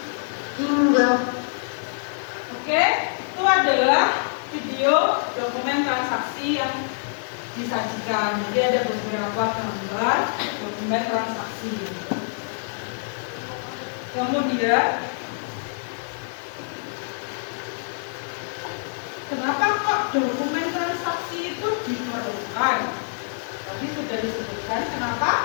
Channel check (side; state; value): right; silent; 62 dB below the other